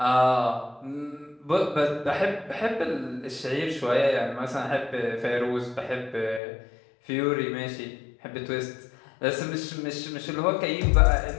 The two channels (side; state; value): right; drops out; at 6.4 s